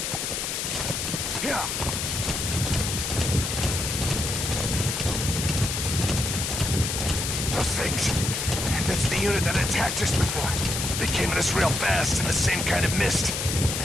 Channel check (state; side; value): noise; left; hiss, 2 dB below the sound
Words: Here! Those things. That's the unit that attacked us before. They came at us real fast in the same kind of mist.